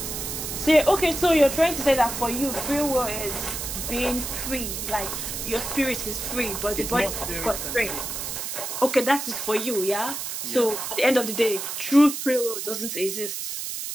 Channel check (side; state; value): right; noise; hiss, 5 dB below the sound